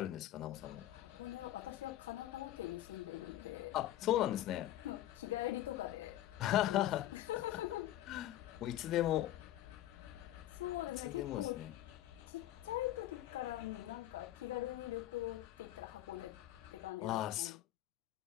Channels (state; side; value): quieter; right; 13.9 dB